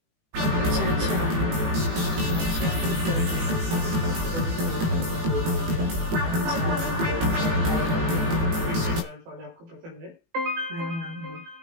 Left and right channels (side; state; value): left; late; 18 ms